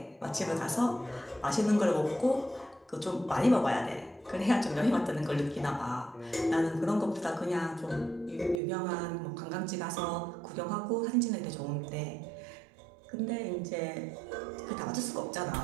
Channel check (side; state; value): left; drops out; at 8.6 s